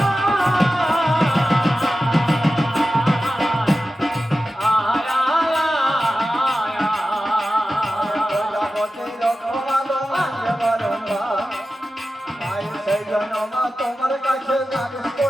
তোমার কাছে নালিশ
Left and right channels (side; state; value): both; normal; correlation 0.93